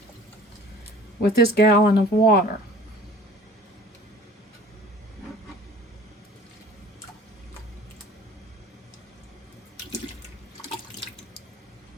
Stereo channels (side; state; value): both; normal; correlation 0.47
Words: with this gallon of water.